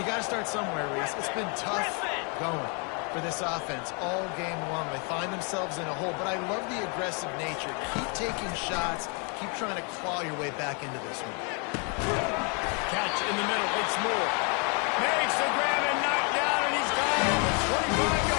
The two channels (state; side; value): quieter; right; 35.6 dB